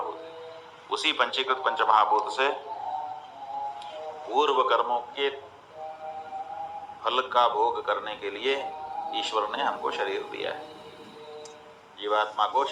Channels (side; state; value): both; identical; correlation 1.00